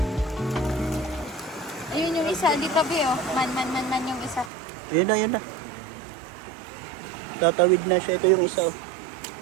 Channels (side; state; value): left; drops out; at 4.5 s